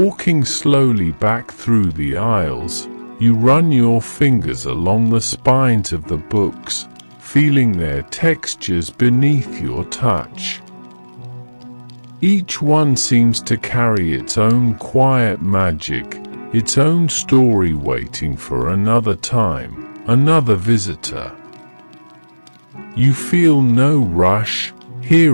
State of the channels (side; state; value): both; inverted; correlation -1.00